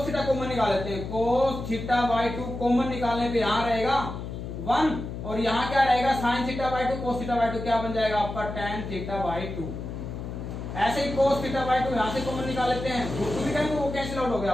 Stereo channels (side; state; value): left; noise; hum, 7 dB below the sound